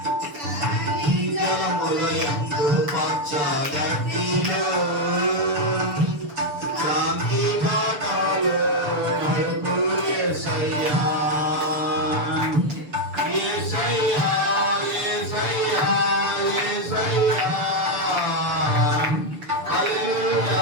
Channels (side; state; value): left; late; 6.9 ms